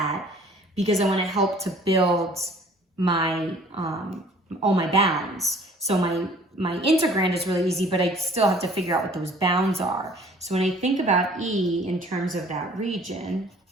because I want to help to build my all my bounds. So my integrand is really easy, but I still have to figure out what those bounds are. So when I think about E in terms of that region,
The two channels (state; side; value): normal; both; correlation 0.53